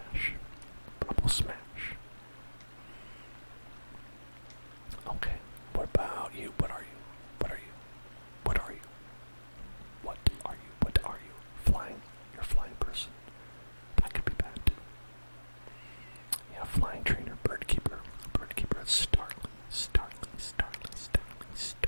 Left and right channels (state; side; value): inverted; both; correlation -1.00